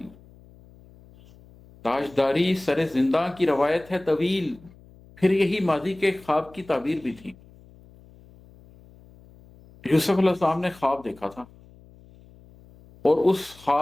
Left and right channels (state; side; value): noise; left; hum, 25 dB below the sound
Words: تاجداری سرے زندہ کی روایت ہے طویل، پھر یہی ماضی کے خواب کی تعبیر بھی تھی. یوسف علیہ السلام نے خواب دیکھا تھا اور اس